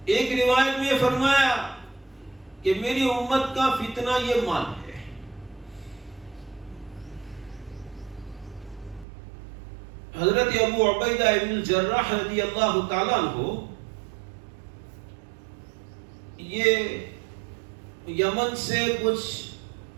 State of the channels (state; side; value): drops out; left; at 9.1 s